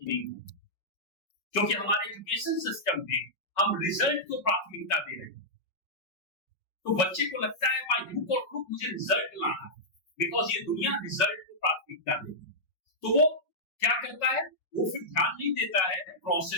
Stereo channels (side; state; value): right; late; 5.4 ms